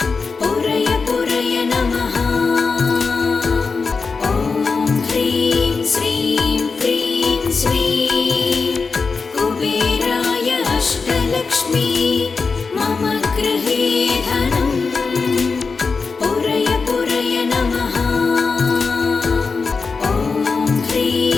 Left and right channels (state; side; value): quieter; right; 4.7 dB